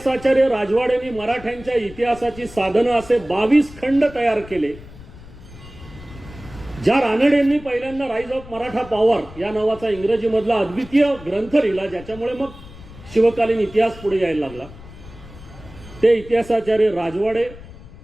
राजवाडेंनी मराठ्यांच्या इतिहासाची साधनं असे 22 खंड तयार केले, ज्या रानडेंनी पहिल्यांदा राईज ऑफ मराठा पॉवर या नावाचा इंग्रजीमधला अद्वितीय ग्रंथ लिहिला ज्याच्यामुळे मग शिवकालीन इतिहास पुढे यायला लागला, ते इतिहासाचार्य राजवाडे,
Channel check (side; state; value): left; noise; rumble, 18 dB below the sound